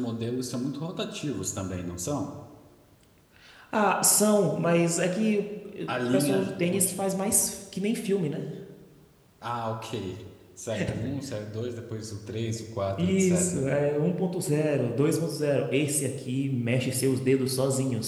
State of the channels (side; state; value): both; identical; correlation 1.00